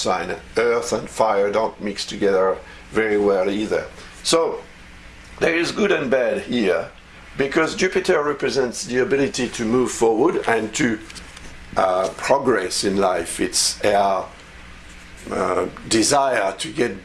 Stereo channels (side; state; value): both; identical; correlation 1.00